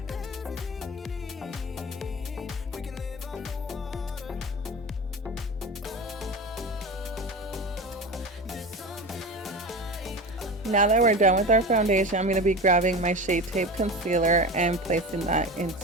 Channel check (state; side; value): normal; both; correlation 0.28